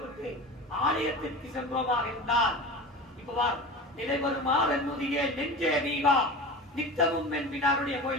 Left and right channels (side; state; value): both; normal; correlation 0.32